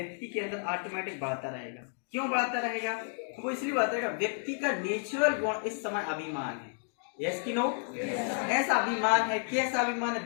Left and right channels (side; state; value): right; silent; 57 dB below the other